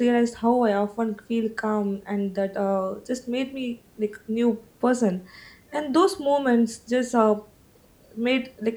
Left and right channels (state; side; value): identical; both; correlation 1.00